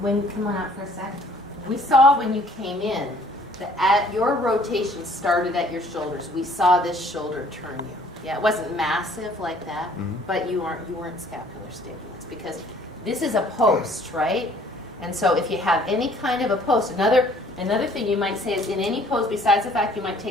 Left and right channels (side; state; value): both; normal; correlation 0.57